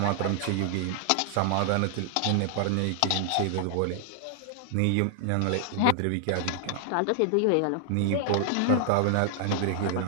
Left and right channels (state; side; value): different; both; correlation 0.00